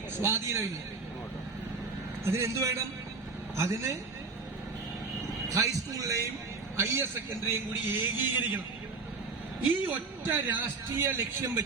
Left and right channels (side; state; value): left; quieter; 4.2 dB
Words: സ്വാധീനമില്ല. അതിനെന്ത് വേണം? അതിന് ഹൈസ്കൂളിലെയും ഹയർ സെക്കൻഡറിയും കൂടി ഏകീകരിക്കണം. ഈ ഒറ്റ രാഷ്ട്രീയ ലക്ഷ്യം